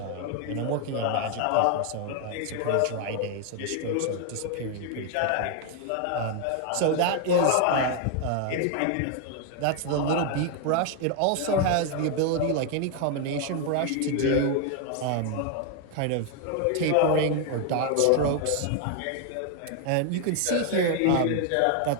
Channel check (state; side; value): different; both; correlation 0.01